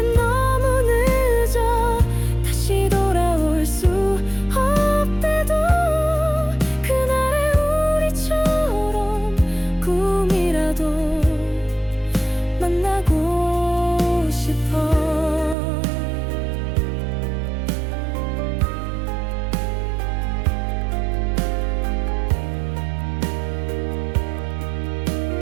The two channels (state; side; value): drops out; left; at 15.6 s